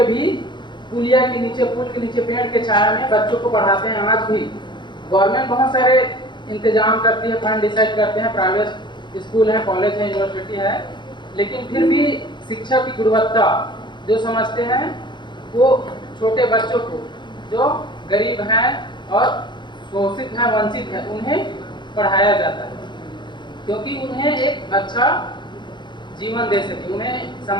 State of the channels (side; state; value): right; late; 0.22 ms